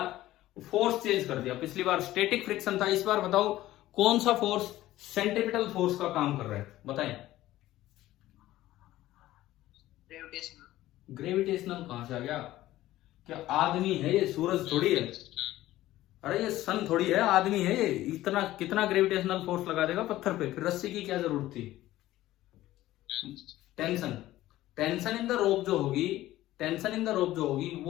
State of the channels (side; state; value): right; quieter; 15.4 dB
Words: फोर्स चेंज कर दिया। पिछली बार स्टैटिक फ्रिक्शन था, इस बार बताओ कौन सा फोर्स सेंट्रीपिटल फोर्स का काम कर रहा है, बताएं। ग्रेविटेशनल कहां से आ गया? क्या आदमी है ये? सूरज थोड़ी है, अरे ये सन थोड़ी है, आदमी है ये। इतना कितना ग्रेविटेशनल फोर्स लगा देगा पत्थर पे? फिर रस्सी की क्या जरूरत थी? टेंशन इन द रोप जो होगी